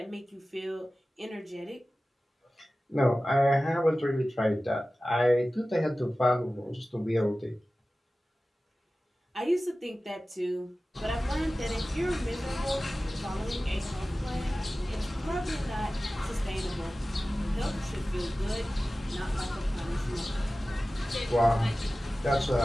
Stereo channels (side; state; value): both; normal; correlation 0.96